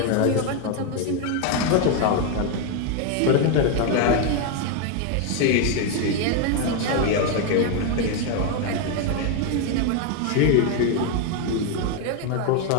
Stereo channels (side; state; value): both; different; correlation 0.01